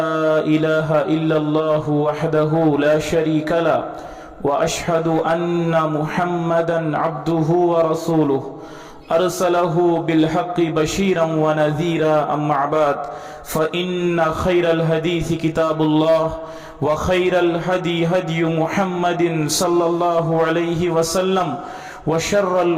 إله إلا الله وحده لا شريك له وأشهد أن محمدا عبده ورسوله أرسله بالحق بشيرا ونذيرا أما بعد فإن خير الحديث كتاب الله وخير الهدي هدي محمد صلى الله عليه وسلم وشر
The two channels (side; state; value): both; identical; correlation 1.00